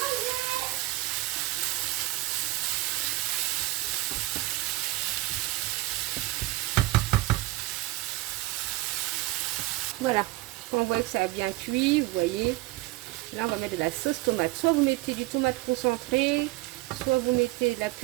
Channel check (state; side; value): quieter; left; 19.0 dB